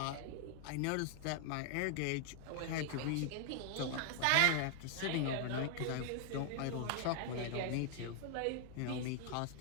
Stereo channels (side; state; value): both; different; correlation 0.00